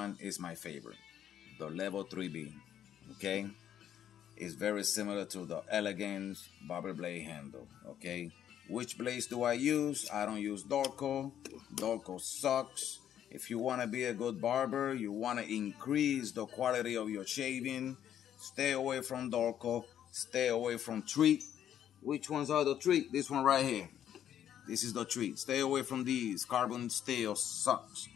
is my favorite, the Level 3B. Okay, it's very similar to the Elegance Barber blade handle. Okay, which blades do I use? I don't use Dorco. Dorco sucks. If you want to be a good barber, you want to increase the quality of your shaving, stay away from Dorco, stay away from Treat. Which ones are the Treat? This one right here. This is the Treat. Stay away from these. Carbon steel sucks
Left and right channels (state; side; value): quieter; right; 10.2 dB